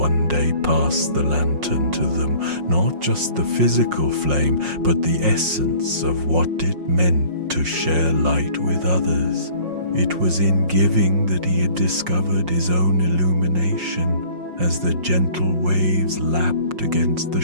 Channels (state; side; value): late; left; 5.6 ms